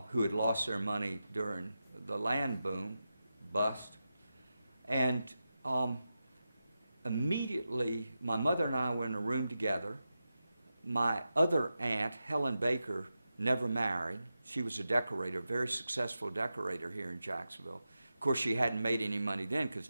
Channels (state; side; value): inverted; both; correlation -0.91